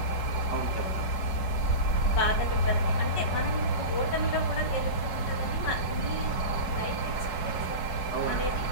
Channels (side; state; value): right; late; 4.6 ms